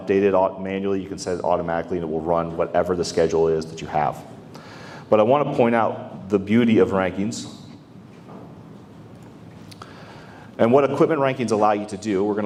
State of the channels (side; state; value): both; identical; correlation 1.00